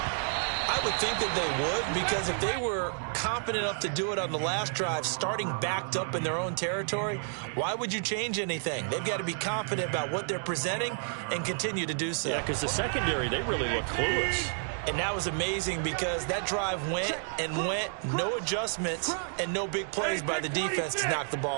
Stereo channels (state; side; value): silent; left; 58 dB below the other